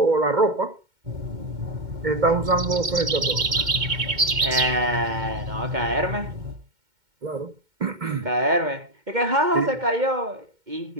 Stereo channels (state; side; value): late; left; 2.2 ms